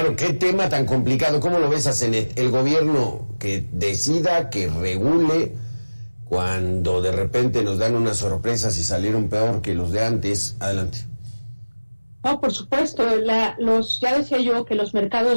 qué tema tan complicado. ¿Cómo lo ves, Asenet? El gobierno que decida, que regule, cuando de repente nos dan unas sorpresas y salieron peor que los de antes. Adelante. No, por supuesto, ya decía yo que los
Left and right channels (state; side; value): inverted; both; correlation -1.00